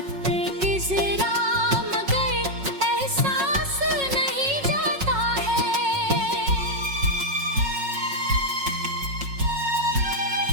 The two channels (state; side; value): late; left; 5.4 ms